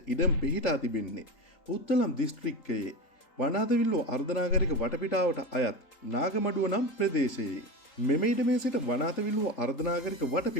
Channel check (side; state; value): right; late; 3.8 ms